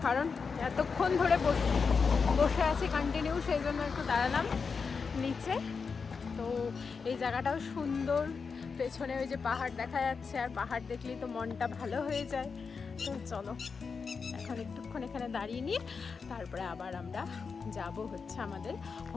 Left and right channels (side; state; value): right; quieter; 5.3 dB